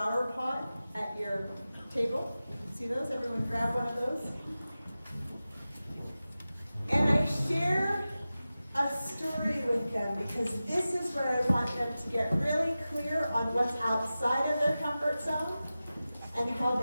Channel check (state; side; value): inverted; both; correlation -0.95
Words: pot at your table. See those? Everyone grab one of those. And I share a story with them because this is where I want them to get really clear on what's outside of their comfort zone and how